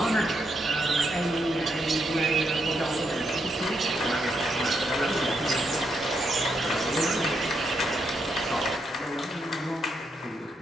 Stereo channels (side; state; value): both; normal; correlation 0.79